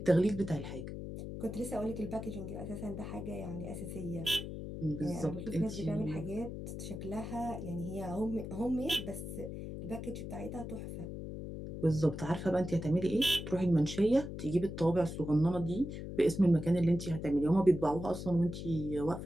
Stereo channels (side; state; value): left; noise; hum, 7 dB below the sound